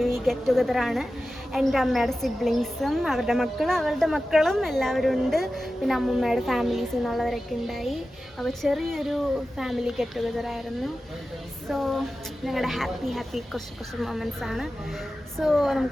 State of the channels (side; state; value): both; normal; correlation 0.94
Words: ഗെറ്റ് ടുഗദറാണ്. എൻ്റെ അമ്മയുടെ സിബ്ലിങ്സും അവരുടെ മക്കളും എല്ലാവരും ഉണ്ട്. പിന്നെ അമ്മൂമ്മയുടെ ഫാമിലീസിൽ നിന്നുള്ളവരൊക്കെ ഉണ്ടായി. അപ്പോൾ ചെറിയൊരു ഫാമിലി ഗെറ്റ് ടുഗദറായിരുന്നു. സോ ഞങ്ങളുടെ ഹാപ്പി കുറച്ച് മൊമെൻറ്റ്സ് ആണ്. സോ